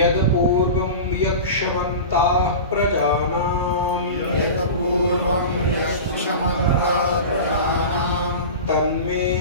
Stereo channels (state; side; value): inverted; both; correlation -0.31